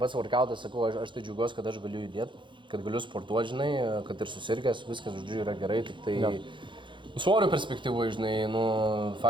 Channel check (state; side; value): late; left; 0.23 ms